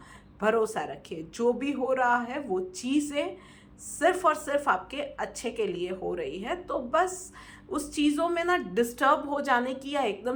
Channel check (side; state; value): both; identical; correlation 1.00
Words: भरोसा रखिए। जो भी हो रहा है वो चीज़ें सिर्फ और सिर्फ आपके अच्छे के लिए हो रही है, तो बस उस चीज़ों में ना डिस्टर्ब हो जाने की या